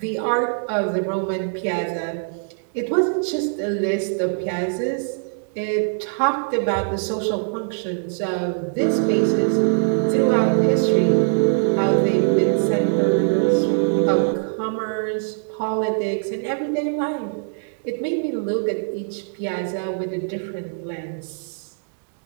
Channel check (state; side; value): silent; left; digital silence